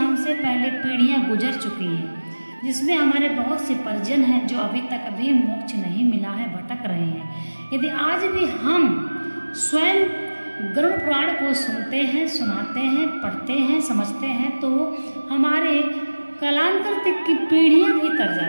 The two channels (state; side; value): inverted; both; correlation -1.00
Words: पहले पीढ़ियां गुजर चुकी हैं, जिसमें हमारे बहुत से परिजन हैं जो अभी तक अभी मोक्ष नहीं मिला है, भटक रहे हैं। यदि आज भी हम स्वयं गरुड़ पुराण को सुनते हैं, सुनाते हैं, पढ़ते हैं, समझते हैं, तो हमारे कालांतर तक की पीढ़ियां भी तर